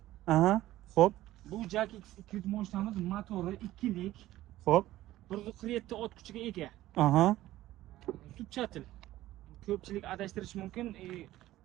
Aha, xo'p. Bu Jak X200 mashinamiz motori 2lik. Xo'p. 147 ot kuchiga ega. Aha. Zubchatil. Ko'pchilik adashtirish mumkin.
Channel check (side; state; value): left; quieter; 15.2 dB